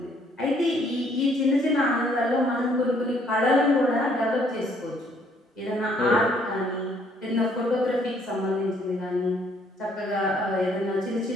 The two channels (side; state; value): both; normal; correlation 0.65